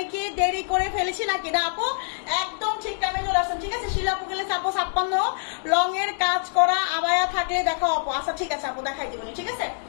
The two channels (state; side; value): silent; right; digital silence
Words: কি দেরি করে ফেলেছি নাকি? না আপু, একদম ঠিক টাইমে চলে আসছেন, ঠিক আছে? শিলাপু গেলে আপু 56 লং এর কাজ করা আবায়া থাকলে দেখাও আপু। আচ্ছা ঠিক আছে আপু, দেখাই দিব, ঠিক আছে?